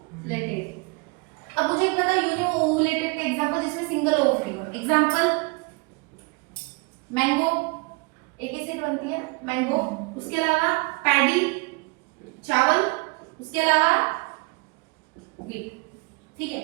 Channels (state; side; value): quieter; left; 28.7 dB